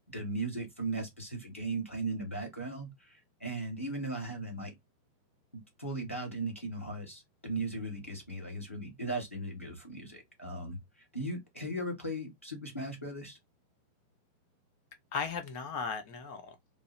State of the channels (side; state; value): both; inverted; correlation -0.36